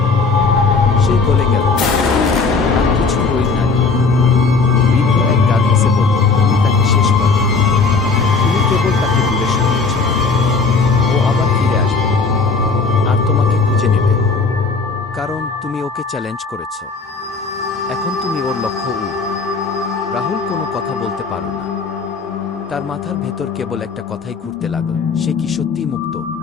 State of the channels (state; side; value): quieter; right; 4.4 dB